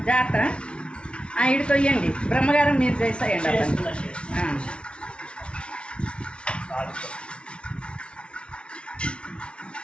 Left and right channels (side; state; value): right; late; 0.058 ms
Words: జాగ్రత్త ఇటు తొయ్యండి బ్రహ్మగారం మీరు చేసేయండి అతను